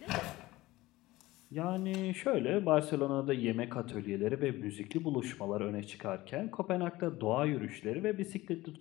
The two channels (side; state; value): right; quieter; 18.4 dB